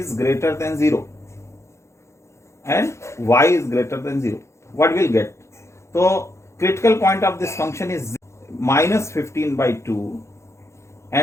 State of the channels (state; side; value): late; right; 0.14 ms